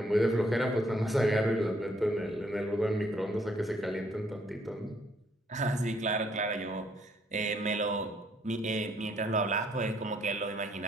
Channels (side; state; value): both; normal; correlation 0.68